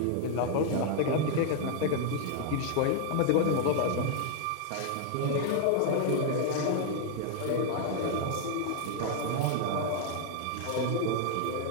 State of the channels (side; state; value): both; different; correlation 0.00